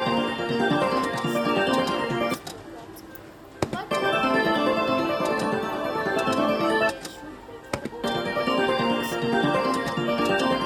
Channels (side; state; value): both; identical; correlation 1.00